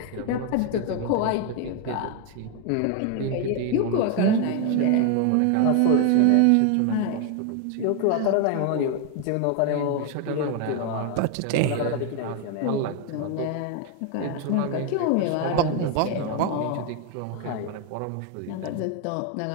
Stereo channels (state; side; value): different; both; correlation 0.01